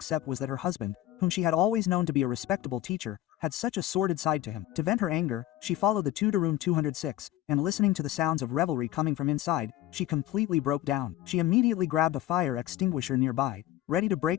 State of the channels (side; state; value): right; quieter; 14.4 dB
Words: was that her husband, whom she had always known to be a respectable teacher, had such a sordid side to him. To vent her anger, she followed the two to room 206, and listening to the sounds of revelry coming from inside, she completely broke down. She immediately grabbed a fire extinguisher nearby, ready to